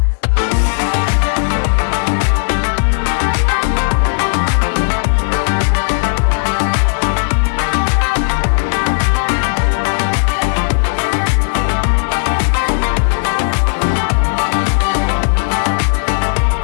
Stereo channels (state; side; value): silent; right; digital silence